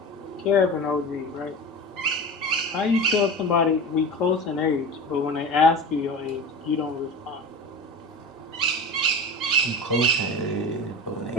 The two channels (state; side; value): normal; both; correlation 0.31